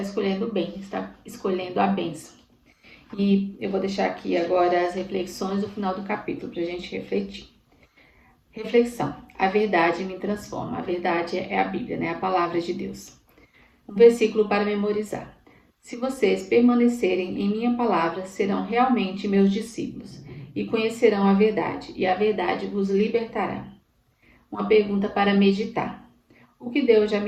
o bem, está escolhendo a bênção. E eu vou deixar aqui agora as reflexões do final do capítulo para a gente refletir. Reflexão. A verdade me transforma. A verdade é a Bíblia, né? A palavra de Deus. Um versículo para memorizar. Se vocês permanecerem em minha palavra, serão realmente meus discípulos e conhecerão a verdade, e a verdade vos libertará. Uma pergunta para meditar. O que Deus já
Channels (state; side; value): identical; both; correlation 1.00